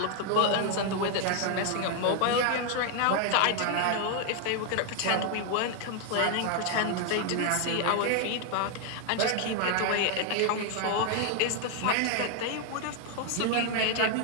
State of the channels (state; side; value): different; both; correlation 0.00